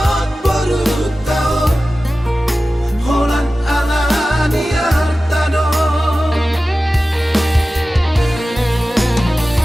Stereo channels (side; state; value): both; normal; correlation 0.95